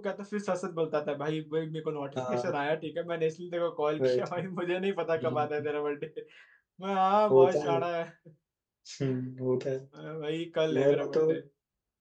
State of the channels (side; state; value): both; identical; correlation 1.00